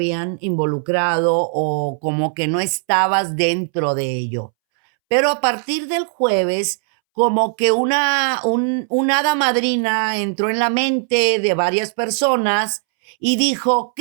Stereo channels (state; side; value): silent; left; 65 dB below the other